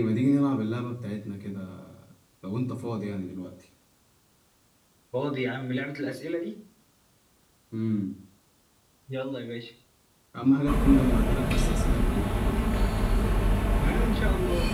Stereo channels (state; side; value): identical; both; correlation 1.00